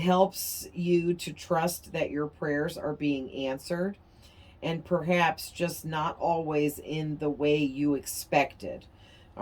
you to trust that your prayers are being answered, and perhaps just not always in the way you expected.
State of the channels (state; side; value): identical; both; correlation 1.00